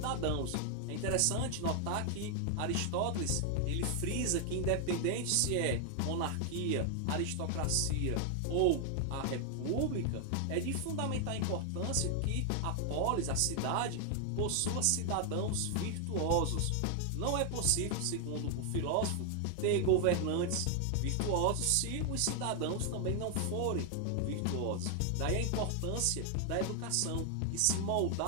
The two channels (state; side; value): different; both; correlation 0.00